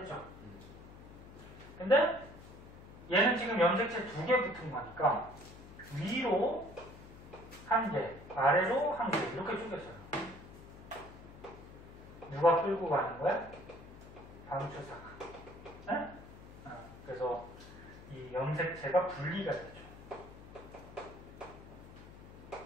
근데 얘는 지금 염색체 2개 붙은 거니까 위로 1개, 아래로 1개 이렇게 쪼개져요. 누가 끌고 가는 거야? 방추사가. 네? 그래서 이 염색체가 분리가 되죠.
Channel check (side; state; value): left; noise; hum, 17 dB below the sound